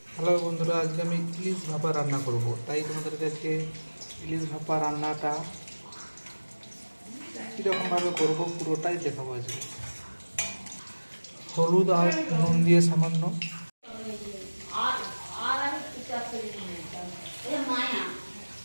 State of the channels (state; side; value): inverted; both; correlation -1.00